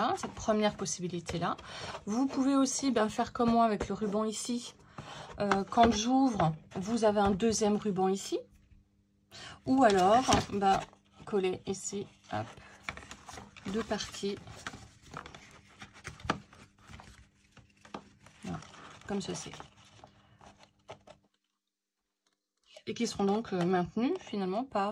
cette première possibilité là. Vous pouvez aussi faire comme moi avec le ruban ici. Quand j'ouvre, vous avez un deuxième ruban ici. Ou alors coller ici, hop, deux parties. Voilà, comme ceci. Et qui seront donc maintenus finalement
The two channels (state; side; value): identical; both; correlation 1.00